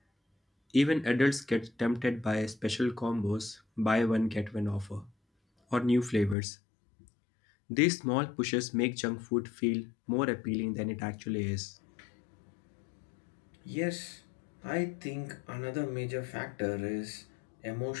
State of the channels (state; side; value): drops out; right; at 6.4 s